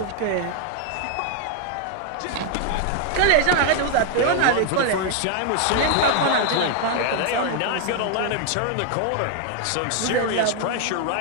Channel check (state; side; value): different; both; correlation 0.00